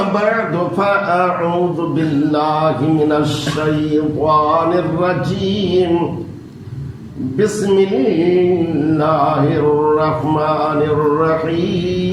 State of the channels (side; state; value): both; identical; correlation 1.00